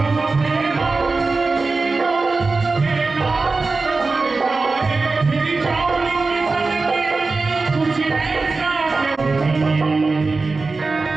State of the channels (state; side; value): quieter; left; 3.9 dB